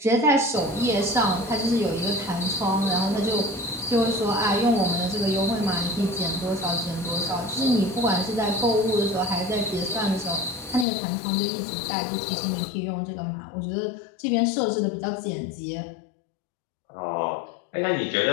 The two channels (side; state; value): right; drops out; at 10.9 s